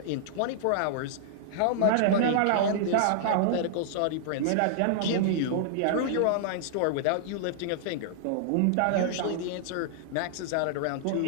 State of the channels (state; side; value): different; both; correlation -0.01